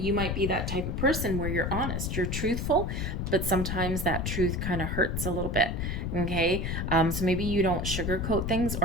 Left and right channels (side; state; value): left; noise; rumble, 2 dB below the sound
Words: might be that type of person where you're honest, you're truthful, but sometimes that truth kind of hurts a little bit. Okay, so maybe you don't sugarcoat things,